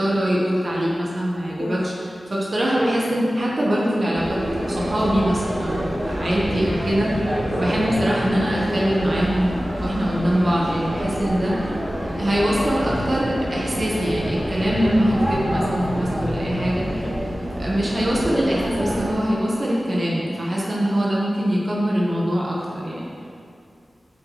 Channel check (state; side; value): normal; both; correlation 0.96